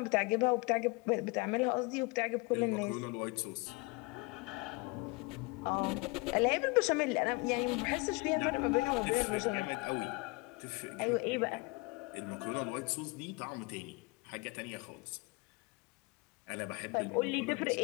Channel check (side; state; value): right; quieter; 27.1 dB